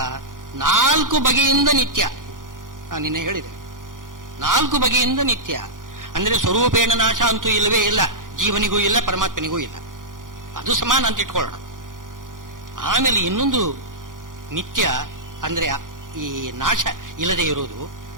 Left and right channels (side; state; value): left; late; 0.89 ms